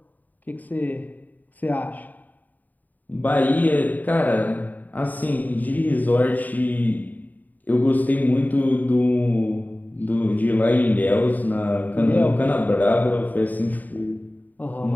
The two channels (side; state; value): right; late; 0.083 ms